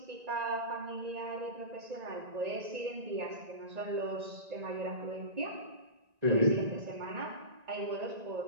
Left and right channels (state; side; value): late; left; 1.9 ms